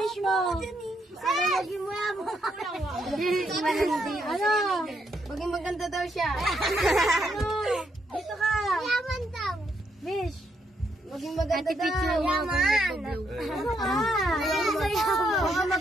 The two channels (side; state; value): both; normal; correlation 0.76